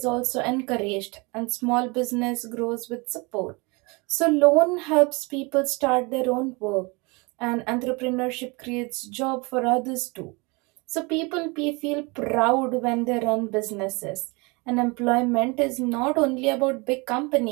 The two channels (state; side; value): quieter; left; 27.8 dB